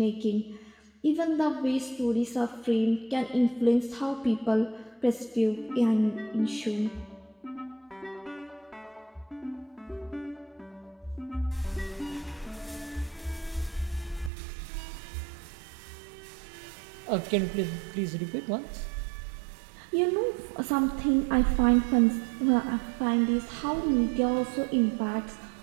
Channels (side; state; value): left; drops out; at 14.3 s